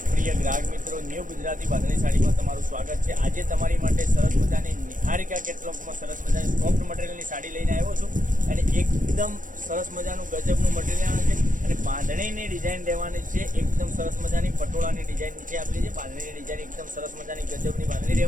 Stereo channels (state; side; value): late; left; 0.38 ms